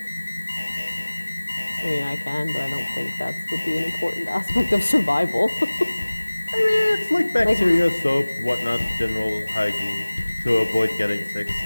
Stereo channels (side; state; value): both; inverted; correlation -1.00